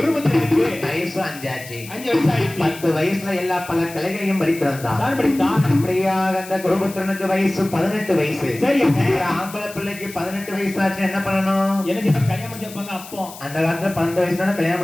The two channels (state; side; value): noise; left; hiss, 16 dB below the sound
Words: வயசு 5 ஆச்சு. 10 வயசுல எல்லா பல கலைகளையும் படித்திருந்தான். அப்படியாக அந்த குருபுத்திரனுக்கு வயசு 18 வயசு. சரி, ஆம்பளை பிள்ளைக்கு 18 வயசு ஆச்சு என்ன பண்ணணும்? அந்த காலத்துல 12 வயசுல கல்யாணம்